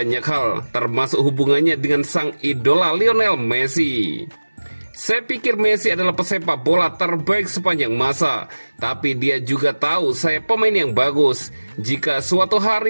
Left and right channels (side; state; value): both; inverted; correlation -1.00